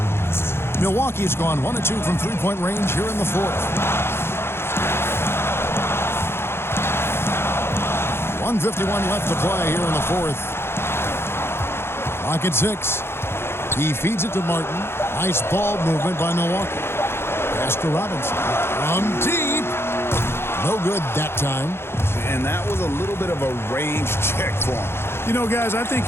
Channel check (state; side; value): late; right; 0.12 ms